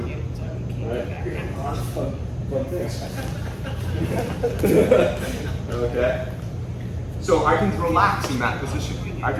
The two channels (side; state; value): both; identical; correlation 1.00